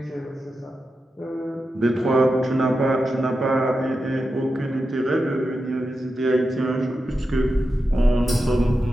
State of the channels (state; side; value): normal; both; correlation 0.90